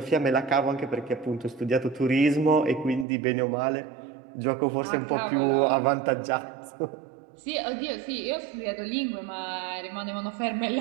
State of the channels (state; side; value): drops out; left; at 3.1 s